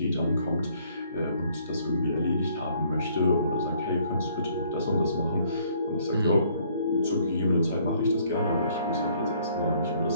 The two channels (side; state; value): both; inverted; correlation -0.63